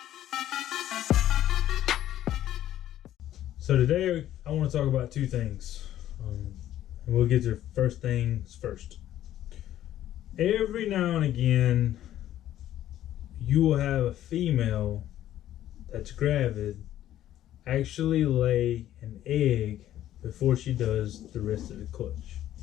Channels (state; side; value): quieter; right; 12.5 dB